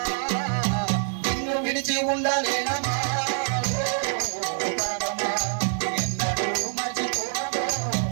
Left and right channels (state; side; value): silent; left; 58 dB below the other